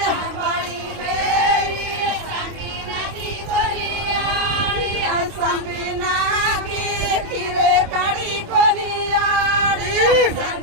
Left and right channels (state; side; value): late; left; 26 ms